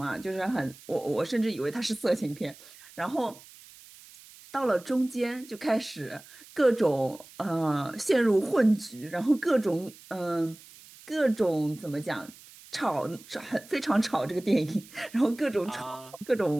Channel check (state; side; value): noise; right; hiss, 21 dB below the sound